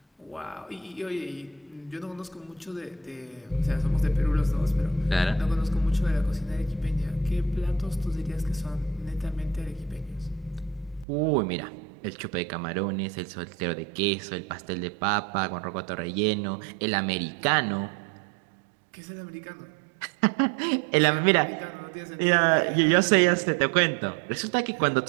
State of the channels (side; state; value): left; drops out; at 11.1 s